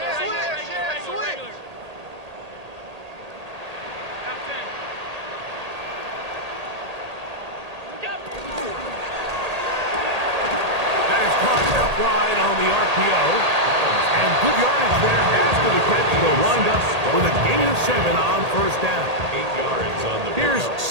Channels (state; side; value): late; left; 1.8 ms